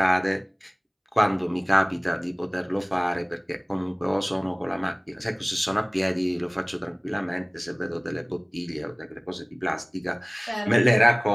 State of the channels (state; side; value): identical; both; correlation 1.00